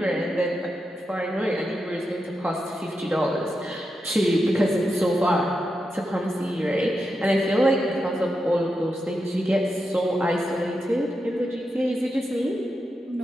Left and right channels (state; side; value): normal; both; correlation 0.87